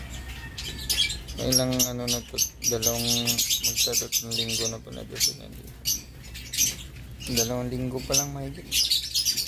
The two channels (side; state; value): both; identical; correlation 1.00